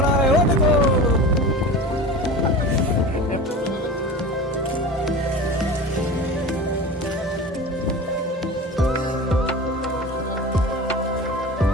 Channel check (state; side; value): normal; both; correlation 0.33